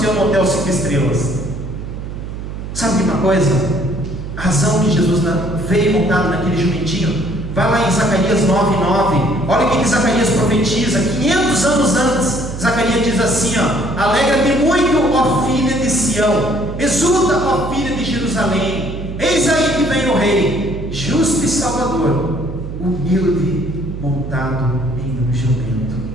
no hotel 5 estrelas? Sabe uma coisa? A razão que Jesus veio montado naquele jumentinho, vai lá em Zacarias 9:9. Olha o que Zacarias profetiza 500 anos antes. Zacarias diz assim, ó: alegra-te muito, ó filha de Sião, exulta, ó filha de Jerusalém, eis aí que vem o Rei, justo e salvador, humilde, montado em um jumento.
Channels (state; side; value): noise; right; hum, 8 dB below the sound